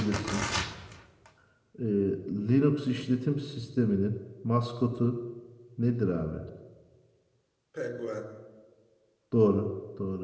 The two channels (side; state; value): both; identical; correlation 1.00